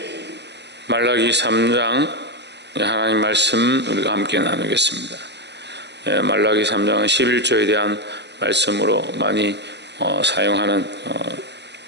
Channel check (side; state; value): left; late; 0.50 ms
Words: 말라기 3장 하나님 말씀 우리가 함께 나누겠습니다. 말라기 3장은 11조에 대한 말씀으로 많이 사용하는